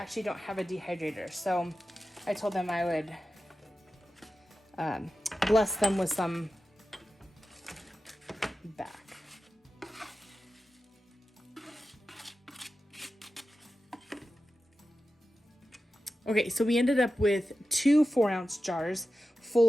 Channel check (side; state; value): both; normal; correlation 0.93